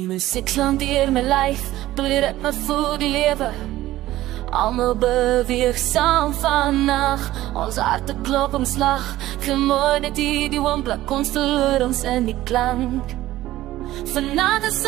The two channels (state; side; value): quieter; left; 15.5 dB